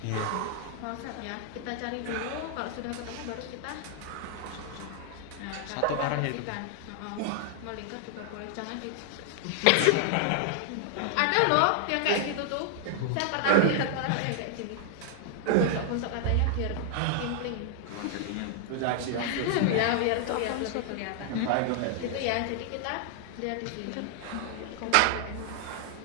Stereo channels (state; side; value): different; both; correlation -0.01